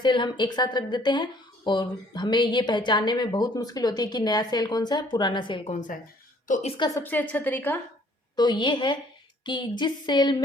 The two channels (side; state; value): both; normal; correlation 0.59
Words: हम एक साथ रख देते हैं और हमें ये पहचानने में बहुत मुश्किल होती है कि नया सेल कौन सा है, पुराना सेल कौन सा है। तो इसका सबसे अच्छा तरीका तो ये है कि